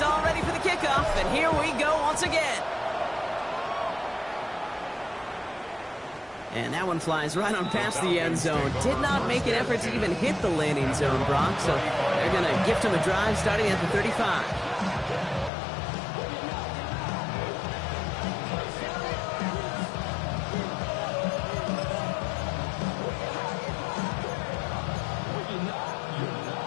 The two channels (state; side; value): drops out; right; at 15.5 s